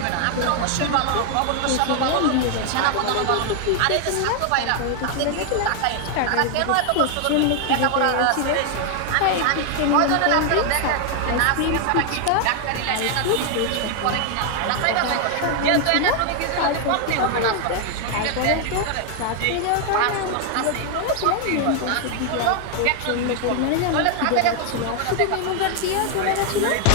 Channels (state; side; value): different; both; correlation 0.00